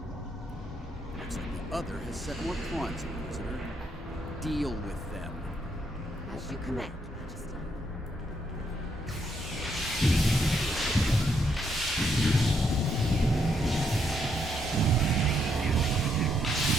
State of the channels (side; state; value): both; normal; correlation 0.75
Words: Looks like the other has set more pawns, Inquisitor. Deal with them. As you command,